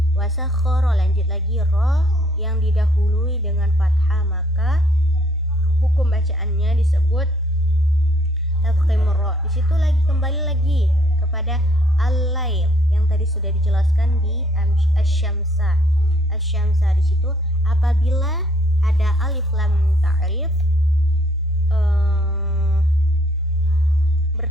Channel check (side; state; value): both; normal; correlation 0.65